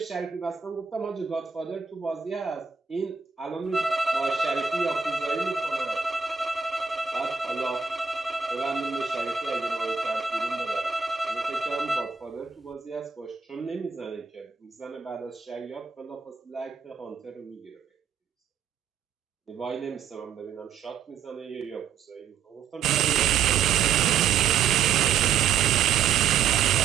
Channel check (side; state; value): left; quieter; 6.8 dB